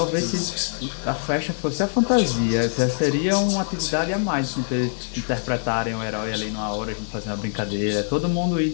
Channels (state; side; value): silent; right; 60 dB below the other